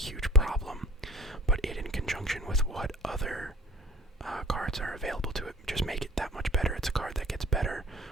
problem, but it in conjunction with what other cards are available to it just make it that much better. It's a card that gets better.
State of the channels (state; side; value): normal; both; correlation 0.48